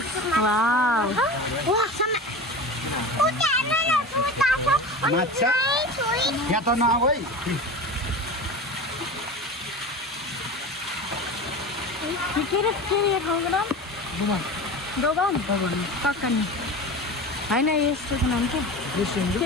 वाउ माछा यहाँ त नआऊ है के अरे ठाउँको नाम दोबान ककनी होइन यस्तो नाम के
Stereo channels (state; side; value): normal; both; correlation 0.31